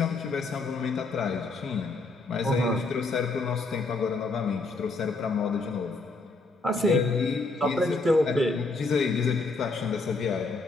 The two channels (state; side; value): quieter; right; 3.4 dB